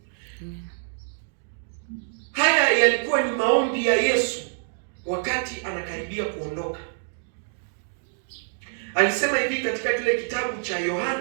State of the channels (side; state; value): left; silent; digital silence